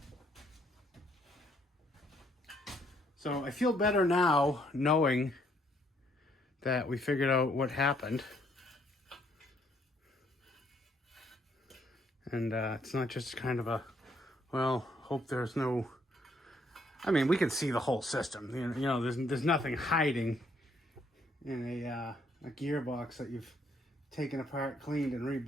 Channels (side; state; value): both; normal; correlation 0.69